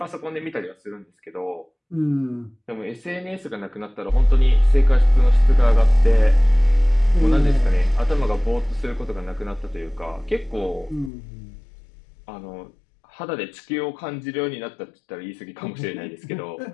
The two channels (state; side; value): drops out; right; at 11.1 s